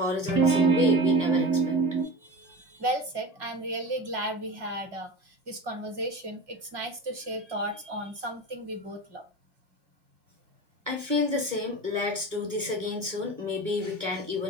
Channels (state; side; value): late; left; 1.0 ms